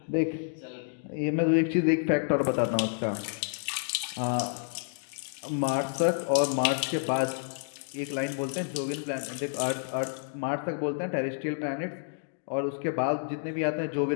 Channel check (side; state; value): right; silent; digital silence